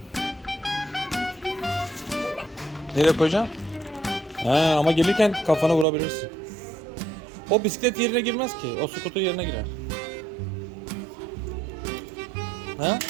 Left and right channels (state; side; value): drops out; left; at 5.9 s